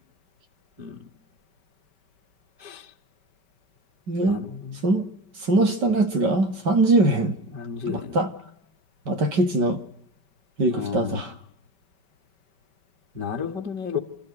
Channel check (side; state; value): left; late; 5.2 ms